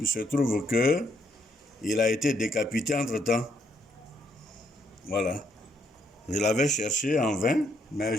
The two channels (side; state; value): both; normal; correlation 0.73